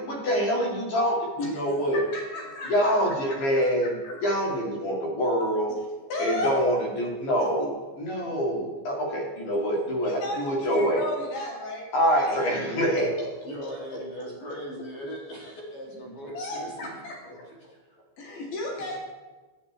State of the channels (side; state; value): right; late; 15 ms